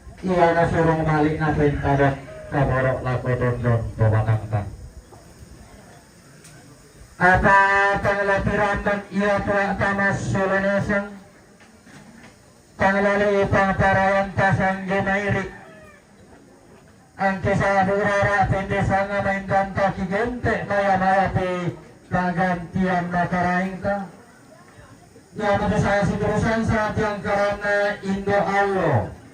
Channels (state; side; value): identical; both; correlation 1.00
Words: iya na surong malik na pintadok kaborok lako dondon pemanangkan apa panglapiran dan iya tuak tamas solonesang panglali pangparayan tasang gemairik ang kisah hurara pendesanga main ganta kigente maya-maya pi kagantian makaraing ka ya pada saya sidurusan saat yang karena Indo Allo